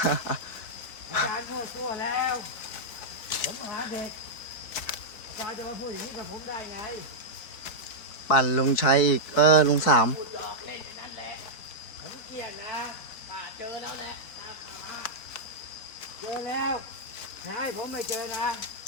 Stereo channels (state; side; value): late; right; 4.5 ms